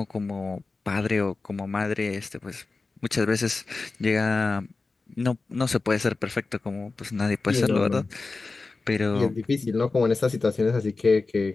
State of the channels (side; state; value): right; quieter; 3.8 dB